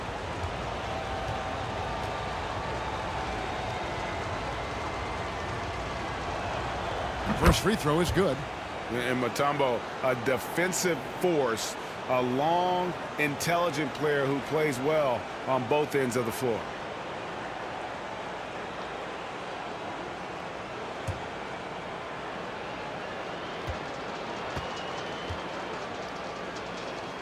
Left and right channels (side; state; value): both; identical; correlation 1.00